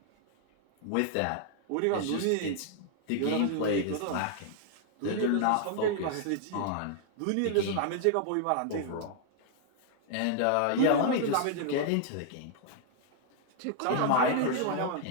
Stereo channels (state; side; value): different; both; correlation 0.00